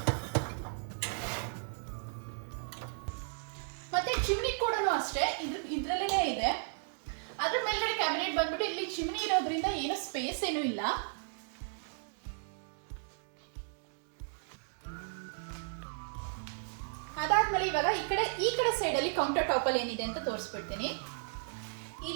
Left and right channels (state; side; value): silent; left; digital silence